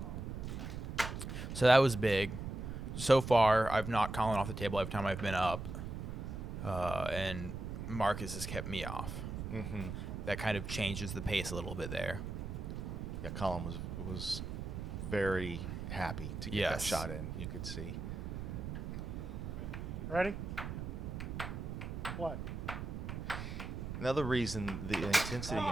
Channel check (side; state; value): right; noise; rumble, 5 dB below the sound